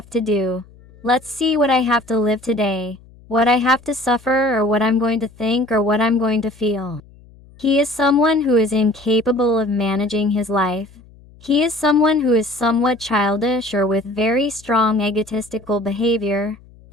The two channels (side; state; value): left; noise; hum, 25 dB below the sound